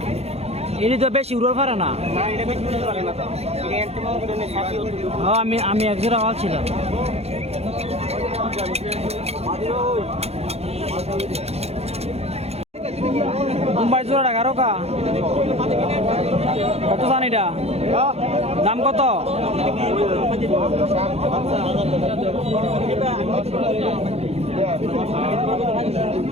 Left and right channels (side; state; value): left; late; 0.30 ms